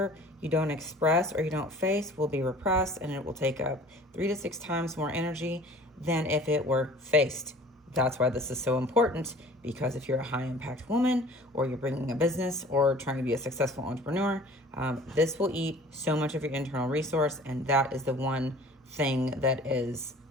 you don't express or you don't face will be repressed, and it will take up 3 to 6 times more energy than if it were faced. That's why this is so important, because if you're a high impact woman or you're bringing a business or trying to be a successful entrepreneur, this will eat so much of your internal resource, and that is the one thing that is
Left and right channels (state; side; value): normal; both; correlation 0.47